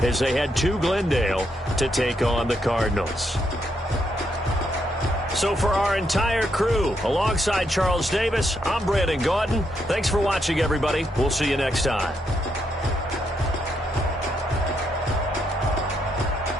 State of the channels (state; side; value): normal; both; correlation 0.78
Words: as they head to Glendale to take on the Cardinals. So for our entire crew, alongside Charles Davis, I'm Brandon Gaudin. Thanks for watching, everybody. We'll see you next time.